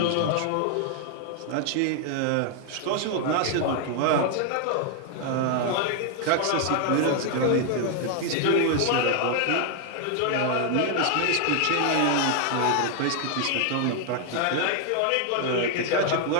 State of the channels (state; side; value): different; both; correlation 0.00